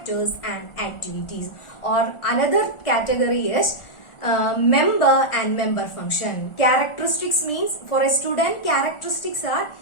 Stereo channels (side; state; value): right; late; 1.4 ms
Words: and activities. Or another category is member and member function. Characteristics means for a student, characteristics are